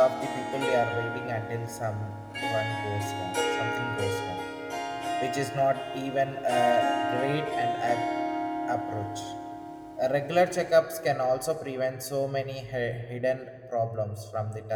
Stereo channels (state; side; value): identical; both; correlation 1.00